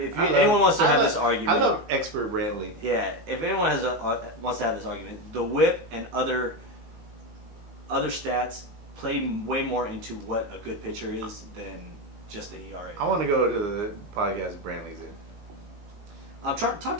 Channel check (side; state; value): left; late; 19 ms